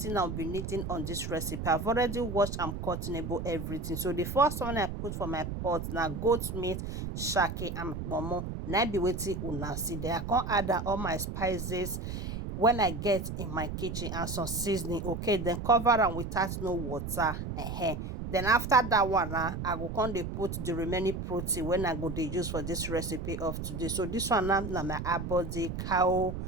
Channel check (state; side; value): noise; right; rumble, 5 dB below the sound